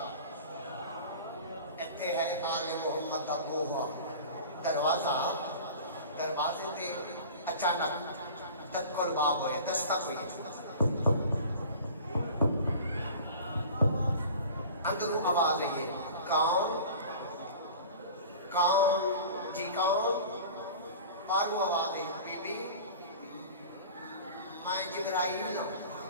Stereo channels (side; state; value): both; inverted; correlation -0.39